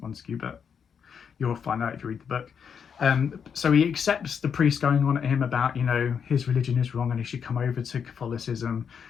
Montague, but you'll find out if you read the book. So he accepts the priest going on at him about, you know, his religion is wrong and he should come over to Catholicism.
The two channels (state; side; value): quieter; right; 7.1 dB